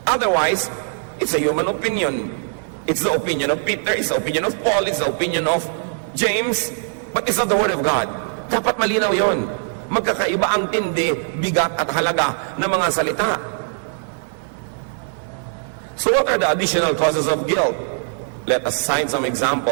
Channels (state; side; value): silent; left; digital silence